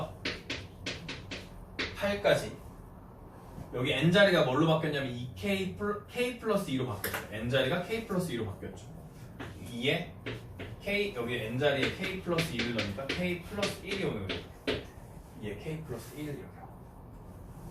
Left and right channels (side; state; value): both; identical; correlation 1.00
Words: 8까지 여기 n자리가 뭘로 바뀌었냐면 2K K 플러스 2로 바뀌었죠. n자리가 K 플러스 2로 바뀌었죠. 2에 K 여기 n자리에 K 플러스 2를 넣으니까 K 플러스 1이 오는 거예요. 2에 K 플러스 1을 이렇게 하고